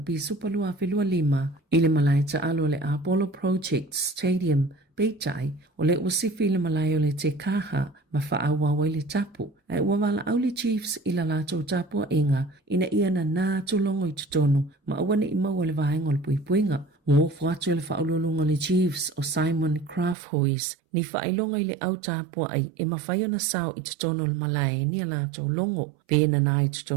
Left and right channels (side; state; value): left; drops out; at 20.2 s